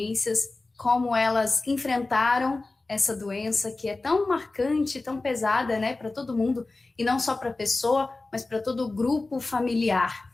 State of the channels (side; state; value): right; quieter; 3.3 dB